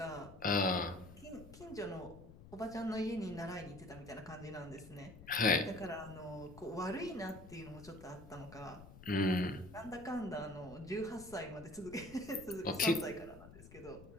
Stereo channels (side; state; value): left; noise; rumble, 17 dB below the sound